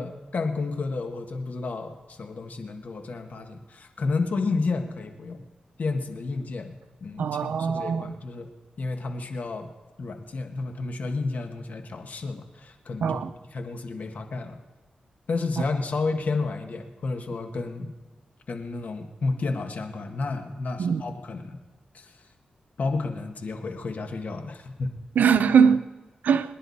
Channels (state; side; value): normal; both; correlation 0.80